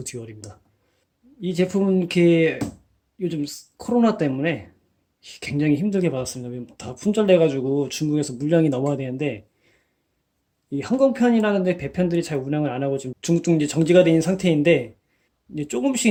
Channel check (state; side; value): identical; both; correlation 1.00